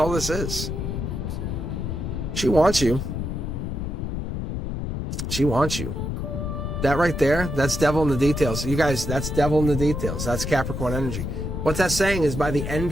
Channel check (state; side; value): noise; left; rumble, 3 dB below the sound